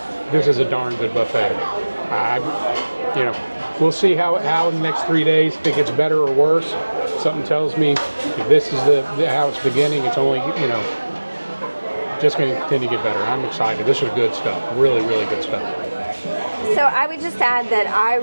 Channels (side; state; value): both; inverted; correlation -1.00